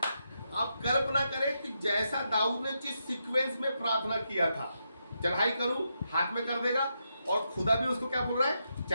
अब कल्पना करें कि जैसा दाऊद ने जिस सीक्वेंस में प्रार्थना किया था, चढ़ाई करूं हाथ में कर देगा, और खुदा भी उसको क्या बोल रहा है,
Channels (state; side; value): inverted; both; correlation -0.83